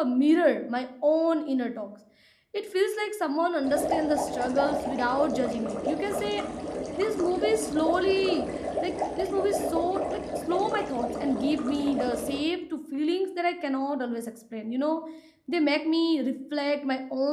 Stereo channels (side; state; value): both; identical; correlation 1.00